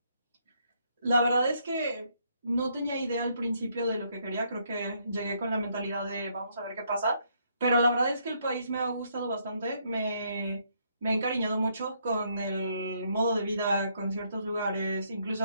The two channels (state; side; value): inverted; both; correlation -0.72